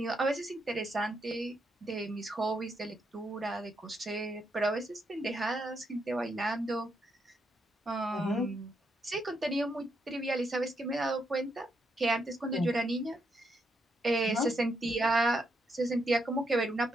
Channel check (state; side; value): normal; both; correlation 0.79